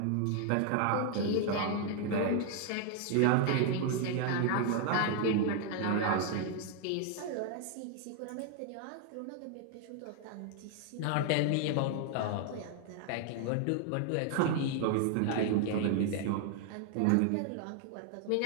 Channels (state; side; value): different; both; correlation 0.00